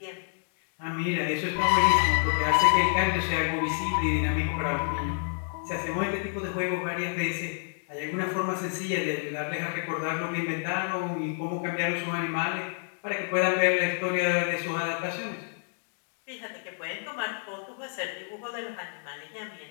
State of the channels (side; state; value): right; silent; 59 dB below the other